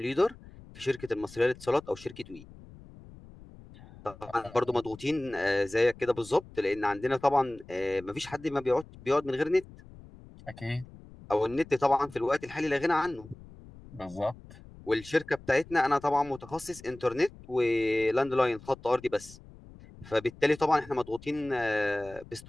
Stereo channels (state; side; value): noise; left; rumble, 20 dB below the sound